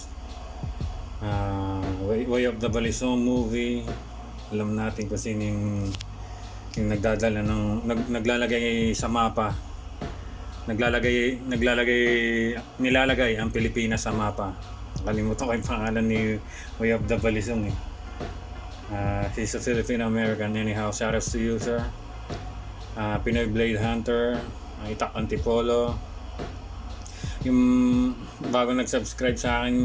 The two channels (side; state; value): both; identical; correlation 1.00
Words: Way of the Balisong movie. Alam natin kung sino yung nagdadala ng naglalagay sa mapa, nilalagay ang Pilipinas sa mapa. Nakalimutan ko yung pangalan ni Way of the Balisong eh. He's a Filipino American. Anyhow, shoutouts to you, sir. Pinoy Blade Hunter, Itak Antipolo. Yung bago nag-subscribe sa